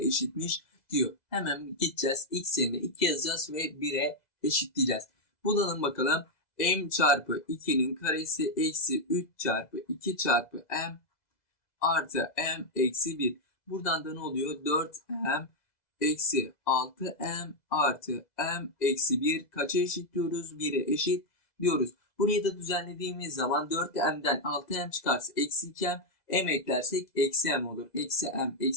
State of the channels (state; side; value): late; right; 2.0 ms